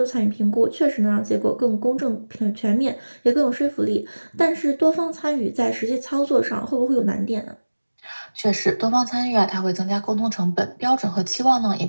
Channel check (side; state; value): both; inverted; correlation -1.00